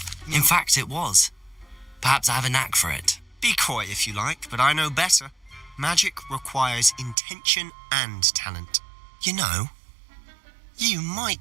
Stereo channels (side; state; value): left; drops out; at 7.2 s